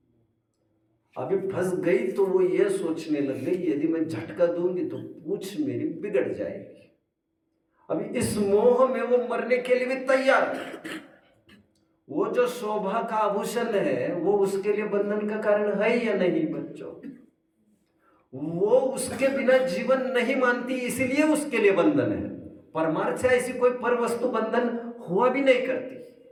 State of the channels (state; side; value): identical; both; correlation 1.00